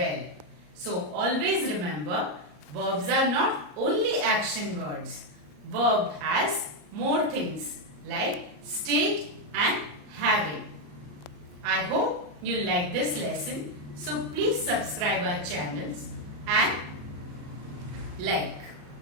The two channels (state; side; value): late; left; 34 ms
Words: So, always remember, verbs are not only action words. Verb has more things like state and having. I hope you like this lesson. So please subscribe our channels and like.